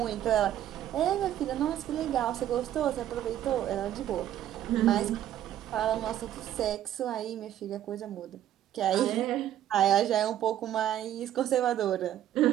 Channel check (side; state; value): left; quieter; 11.7 dB